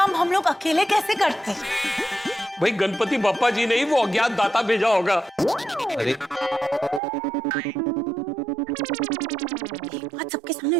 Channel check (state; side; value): drops out; left; at 7.0 s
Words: हम लोग अकेले कैसे करते। भाई गणपति बापा जी ने ही वो अज्ञात दाता भेजा होगा। अरे बात सबके सामने